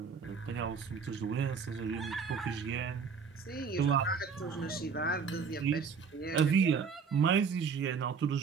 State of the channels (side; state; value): left; quieter; 5.8 dB